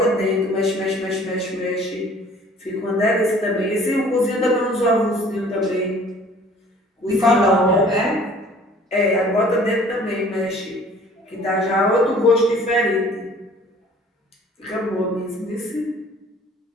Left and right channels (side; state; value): both; normal; correlation 0.52